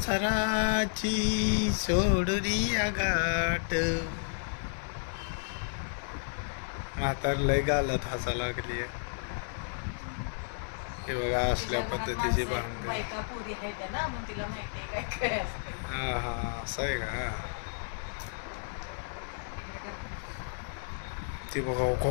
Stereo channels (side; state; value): right; silent; 56 dB below the other